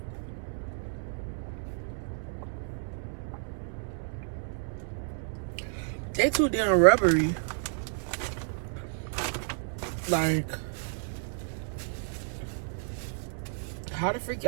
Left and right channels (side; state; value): left; silent; 57 dB below the other